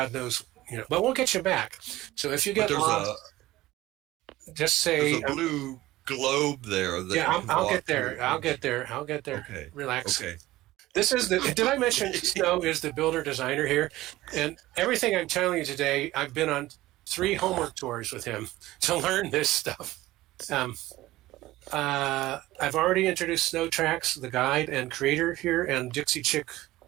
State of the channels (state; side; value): quieter; left; 17.0 dB